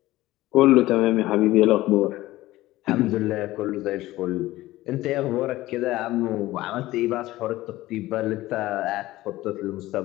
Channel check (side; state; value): right; quieter; 17.0 dB